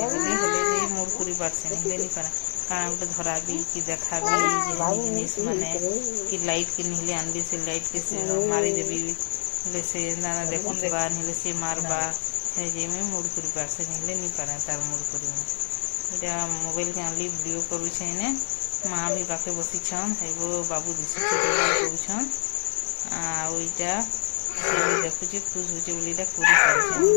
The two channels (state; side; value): silent; right; 61 dB below the other